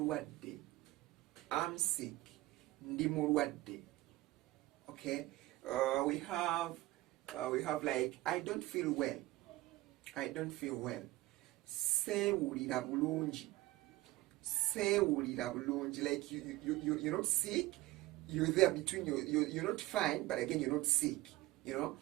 I'm sick. Ndi mulwadde. Okay, we have like I don't feel well. I don't feel well. Sewulira bulungi. Sewulira bulungi. Like you're not sick. You're there between you're not fine, but again you're not sick. You know.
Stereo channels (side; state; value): left; quieter; 18.1 dB